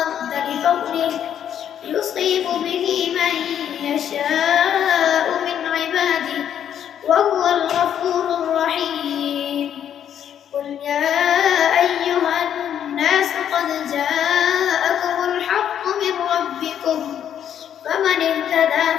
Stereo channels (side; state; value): right; quieter; 9.5 dB